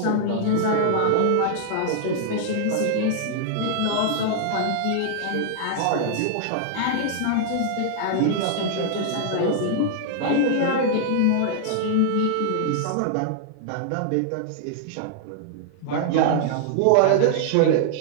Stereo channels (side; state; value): both; different; correlation -0.01